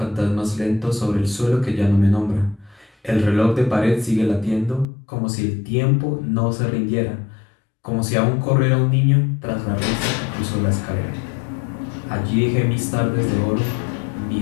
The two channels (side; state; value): right; drops out; at 4.9 s